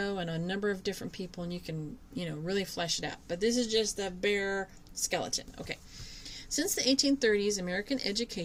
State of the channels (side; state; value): both; identical; correlation 1.00